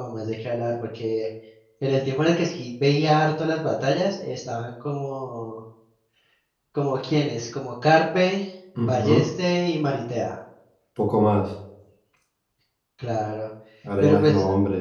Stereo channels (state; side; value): identical; both; correlation 1.00